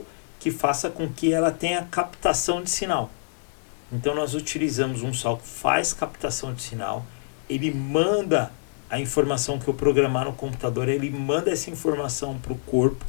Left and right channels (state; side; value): silent; right; digital silence